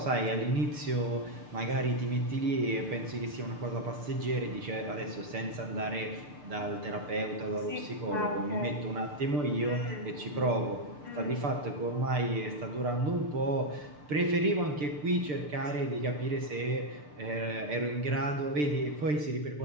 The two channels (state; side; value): late; left; 6.8 ms